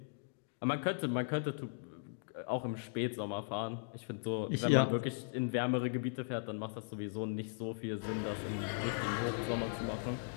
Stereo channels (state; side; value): silent; right; digital silence